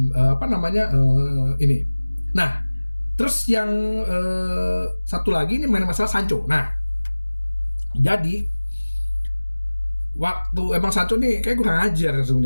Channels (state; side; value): inverted; both; correlation -1.00